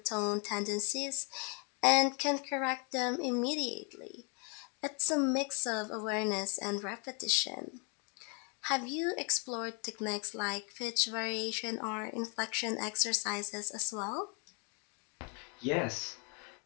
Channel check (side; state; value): right; quieter; 35.5 dB